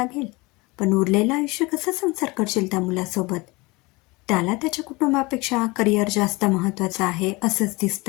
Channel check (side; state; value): right; quieter; 24.3 dB